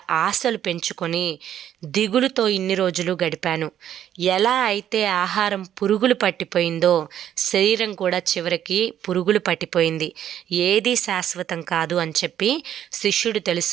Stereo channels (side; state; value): left; quieter; 10.6 dB